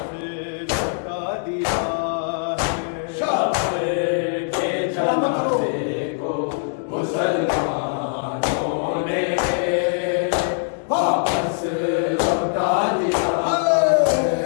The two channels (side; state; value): right; silent; digital silence